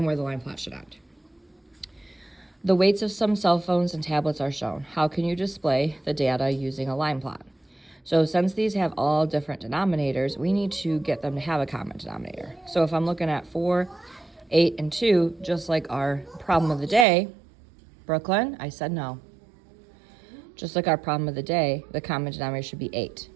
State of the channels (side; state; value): left; drops out; at 17.1 s